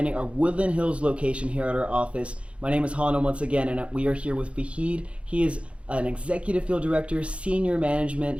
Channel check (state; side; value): late; left; 0.061 ms